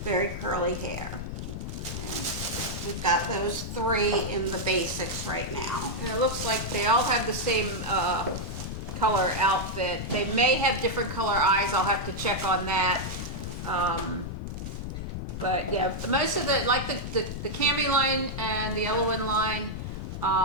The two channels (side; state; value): left; noise; rumble, 6 dB below the sound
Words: very curly hair. Okay. We've got those 3 in the basics right now. And it looks like they all have the same color outfit. They may have different color eyes. I'll have to check on that. But yeah, most of the, like the Cami line and the Ellowynne line,